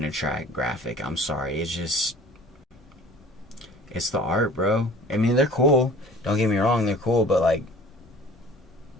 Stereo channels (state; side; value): normal; both; correlation 0.46